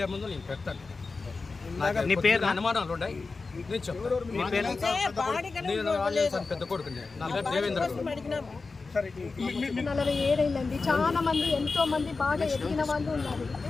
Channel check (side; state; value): right; quieter; 4.1 dB